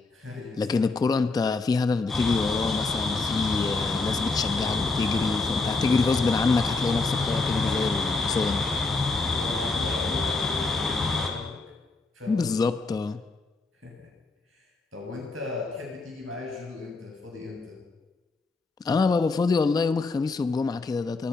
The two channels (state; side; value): quieter; right; 3.7 dB